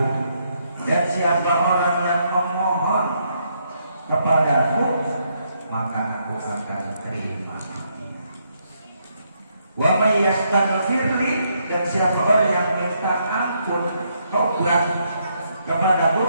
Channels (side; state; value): both; inverted; correlation -0.75